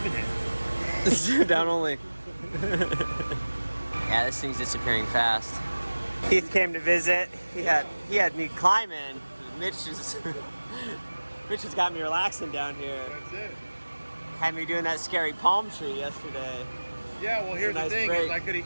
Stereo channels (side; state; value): both; inverted; correlation -1.00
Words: it. down only. Yeah, this thing's disappearing fast. Keith came to visit. He had me climbing. Mitch has got me relaxing down here. That's it. Had me doing that scary palm tree yesterday. Yeah, well, here's a nice the thing: break. is I could